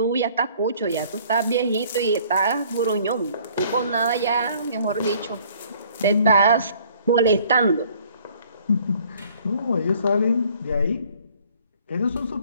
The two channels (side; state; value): both; inverted; correlation -0.57